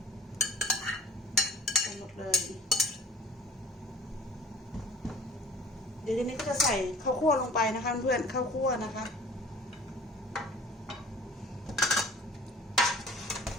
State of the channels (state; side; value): normal; both; correlation 0.46